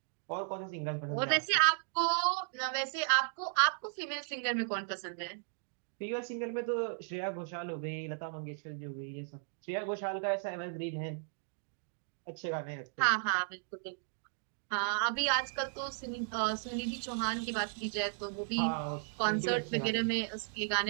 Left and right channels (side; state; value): left; silent; digital silence